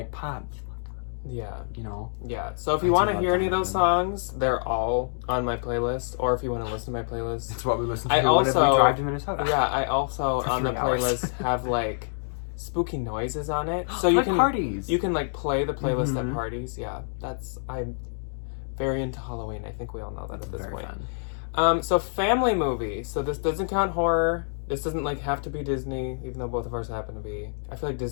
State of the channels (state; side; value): silent; right; digital silence